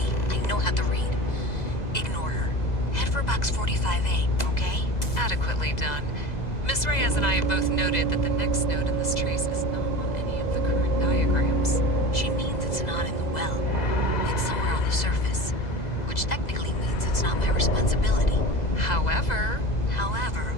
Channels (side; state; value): right; late; 2.0 ms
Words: I know how to read. Ignore her. Head for box 45A, okay? Adequately done. Miss Reyes and I have both noted that the next node in this trace is not on any of the current diagrams. She means it's not in the well. It's somewhere on the surface. Which technically means it's not my responsibility. However,